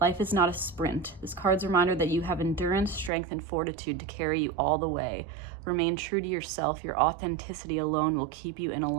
is not a sprint. This card's a reminder that you have endurance, strength, and fortitude to carry you all the way. Remain true to yourself. Your authenticity alone will keep you in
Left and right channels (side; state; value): left; drops out; at 3.1 s